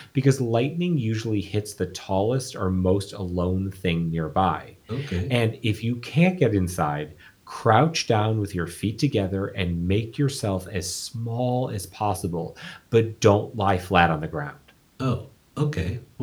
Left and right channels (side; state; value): both; identical; correlation 1.00